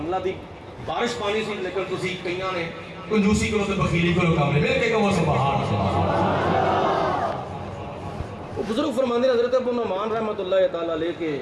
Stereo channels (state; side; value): identical; both; correlation 1.00